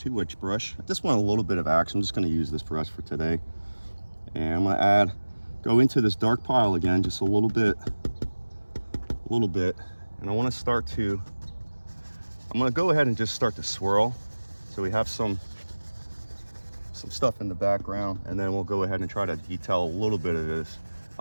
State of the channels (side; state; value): both; inverted; correlation -1.00